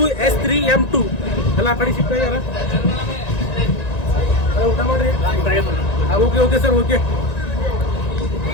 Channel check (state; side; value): late; right; 1.9 ms